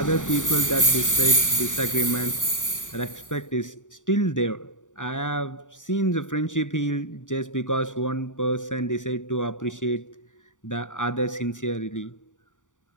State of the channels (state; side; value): late; right; 0.86 ms